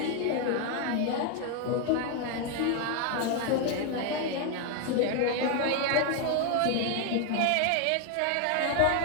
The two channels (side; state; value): both; different; correlation 0.01